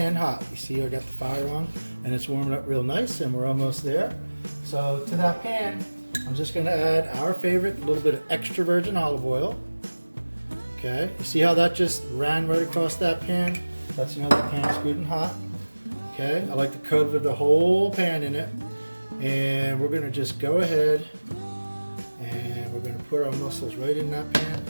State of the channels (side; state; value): both; inverted; correlation -1.00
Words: hot. You see I got the fire on, and it's warming up real nice, and we're almost there. So to that pan, I'm just going to add our favorite, a little bit of extra virgin olive oil. Okay, you see how that just ran right across that pan? That's another pan's good and hot. Okay, I like to cover the whole pan in it. And we're going to just go ahead and we're going to put our mussels right in that pan.